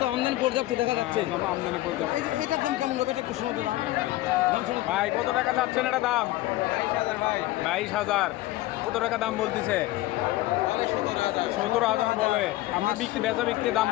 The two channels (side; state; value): right; quieter; 17.1 dB